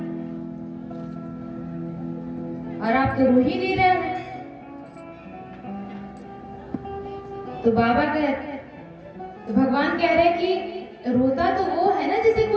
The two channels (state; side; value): identical; both; correlation 1.00